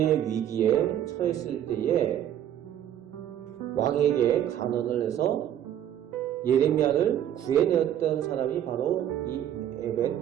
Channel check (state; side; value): quieter; left; 10.8 dB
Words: 위기에 처했을 때에 왕에게 간언을 해서 예레미야를 구해내었던 사람이 바로 이